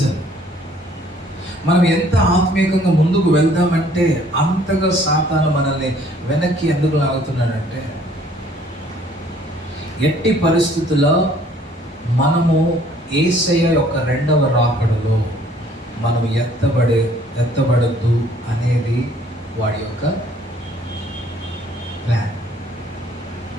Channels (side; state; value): both; normal; correlation 0.59